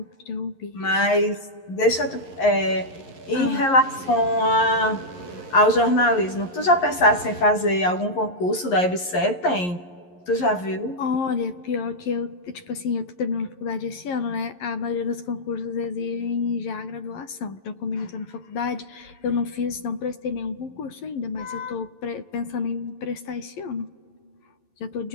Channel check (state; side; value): late; right; 11 ms